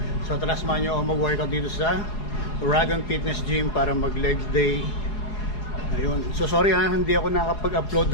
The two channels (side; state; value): right; late; 4.8 ms